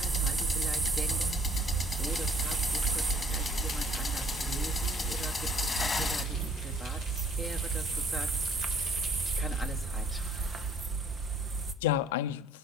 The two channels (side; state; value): both; normal; correlation 0.58